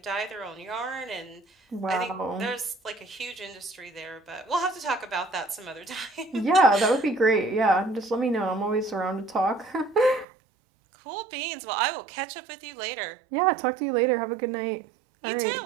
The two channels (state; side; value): drops out; left; at 10.2 s